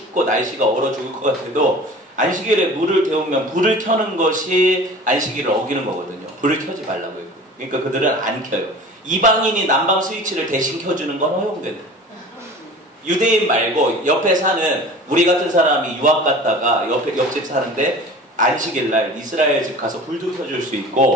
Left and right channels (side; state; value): both; normal; correlation 0.40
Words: 날씨가 얼어 죽을 것 같아도 안식일에 물을 데우면 불을 켜는 것이 안식일을 어기는 거거든요. 불을 켜지 말라고 했고. 그러니까 그들은 안 켜요. 이방인이 난방 스위치를 대신 켜주는 건 허용된다. 유대인 말고 옆에 사는 우리 같은 사람이 유학 갔다가 옆집 사는데 안식일 날 이스라엘 집 가서 불도 켜줄 수